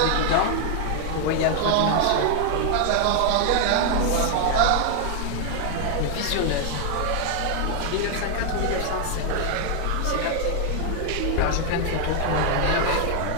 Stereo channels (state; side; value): different; both; correlation 0.00